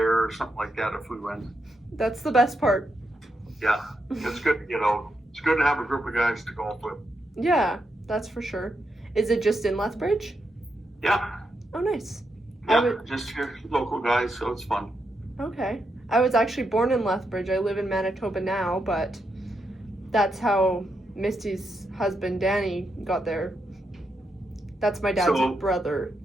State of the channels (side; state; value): both; normal; correlation 0.83